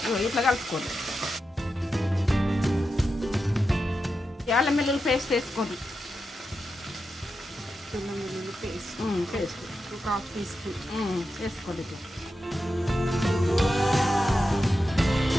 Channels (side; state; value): both; normal; correlation 0.89